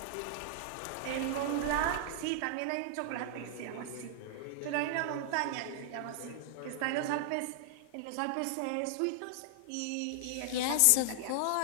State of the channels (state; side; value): different; both; correlation -0.01